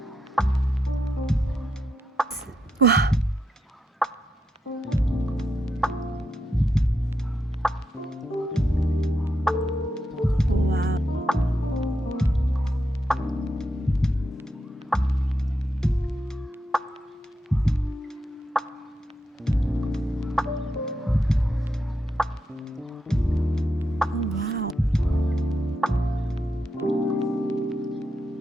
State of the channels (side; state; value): both; normal; correlation 0.84